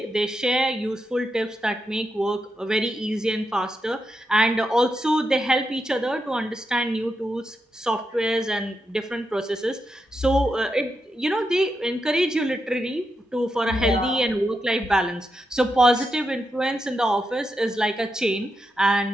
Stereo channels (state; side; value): normal; both; correlation 0.86